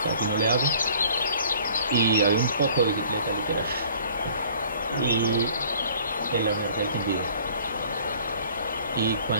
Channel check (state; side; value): inverted; both; correlation -0.53